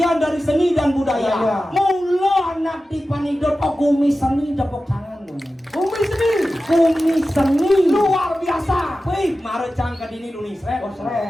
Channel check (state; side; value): normal; both; correlation 0.94